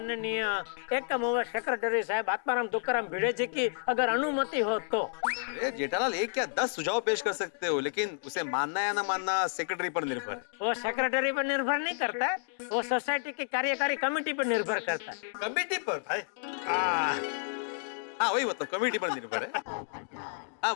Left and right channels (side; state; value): right; silent; digital silence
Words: एकम सेक्रेटरी साहब आत्माराम तुकाराम भिड़े जी की अगर अनुमति हो तो। अरे जेठालाल, एक क्या 10 सुझाव पेश कर सकते हो, लेकिन उसे मानना या ना मानना सेक्रेटरी पर निर्भर है। वो सेक्रेटरी पर निर्भर नहीं करता है, वो सोसाइटी की कार्यकारी कमेटी पर निर्भर करता है। कमेटी पर भाई? हाँ वही मतलब, कमेटी पर निर्भर है। हाँ